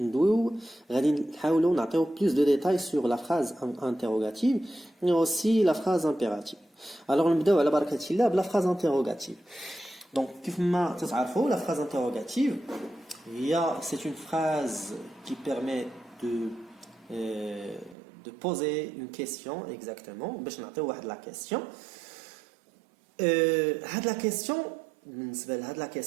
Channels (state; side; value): drops out; left; at 17.9 s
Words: غادي نحاولوا نعطيو plus de détails sur la phrase interrogative et aussi la phrase impérative. Alors نبداو على بركة الله بلا phrase interrogative. Donc كيف ما تتعرفوا la phrase interrogative c'est une phrase qui permet de poser une question exactement باش نعطيو واحد la question. هاد la question بالنسبه لهاد لا